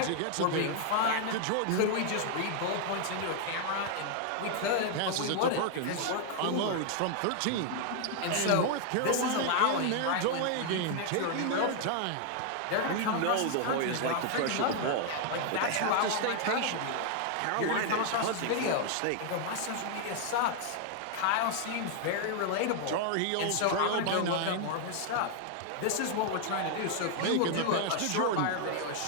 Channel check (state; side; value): different; both; correlation 0.00